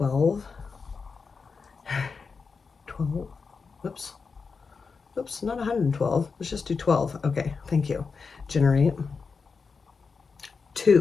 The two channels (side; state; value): right; quieter; 5.0 dB